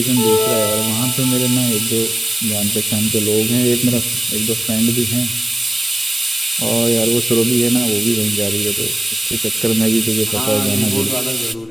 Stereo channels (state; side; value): normal; both; correlation 0.97